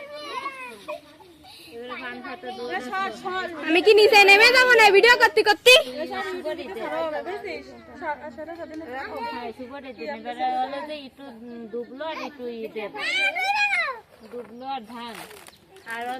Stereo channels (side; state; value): both; identical; correlation 1.00